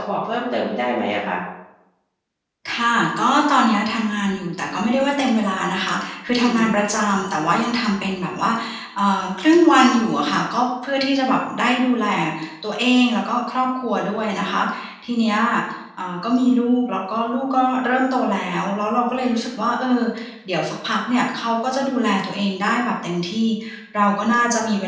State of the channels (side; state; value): both; identical; correlation 1.00